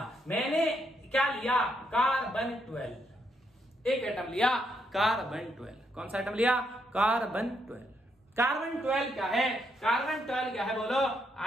मैंने क्या लिया? कार्बन 12। एक एटम लिया कार्बन 12। कौन सा एटम लिया? कार्बन 12। कार्बन 12 क्या है? कार्बन 12 क्या है? बोलो,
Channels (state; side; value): normal; both; correlation 0.77